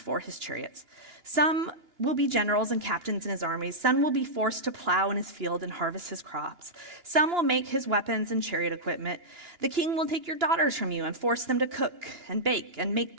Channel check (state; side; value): late; left; 2.9 ms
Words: his chariots. Some will be generals and captains in his armies. Some will be forced to plow in his field and harvest his crops. Some will make his weapons and chariot equipment. The king will take your daughters from you and force them to cook and bake and make